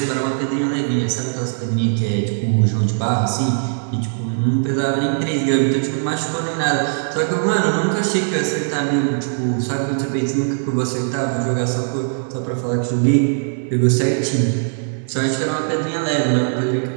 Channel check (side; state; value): left; silent; 66 dB below the other